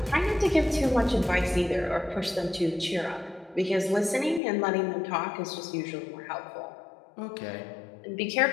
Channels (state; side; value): drops out; right; at 4.4 s